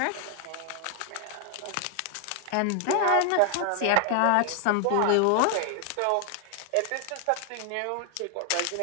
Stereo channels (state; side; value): different; both; correlation 0.00